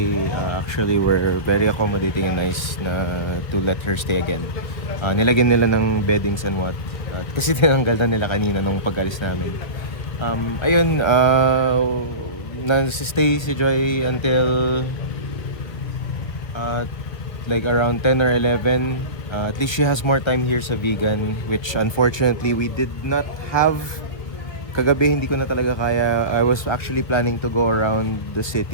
actually were very accommodating and nice na to let her stay again. Nilagyan nila ng beddings and what. Kasi tinanggal na nila kanina nung pag-alis namin. Ayun, nag-stay si Joy until like around 10 or 11. At least she has more time here sa Vegan, which unfortunately we did not have. Kagabi hindi ko na talaga kaya. I was actually planning to go around the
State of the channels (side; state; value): right; late; 1.5 ms